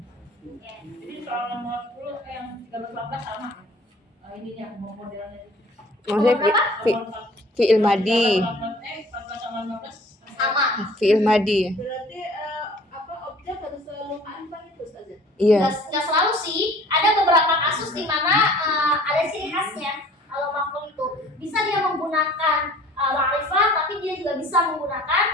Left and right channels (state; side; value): normal; both; correlation 0.51